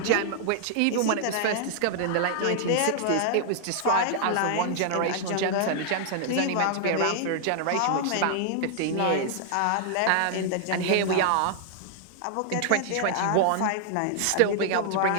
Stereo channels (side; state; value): both; different; correlation 0.00